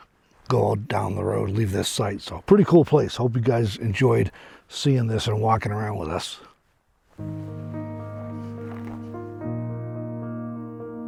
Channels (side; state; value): both; identical; correlation 1.00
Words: go down the road, leave this site. So pretty cool place. Hope you guys enjoyed seeing this and walking around with us.